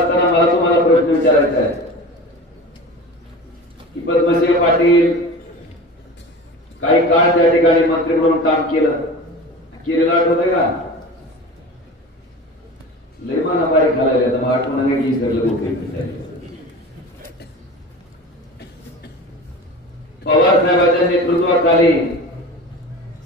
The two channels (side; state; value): both; normal; correlation 0.34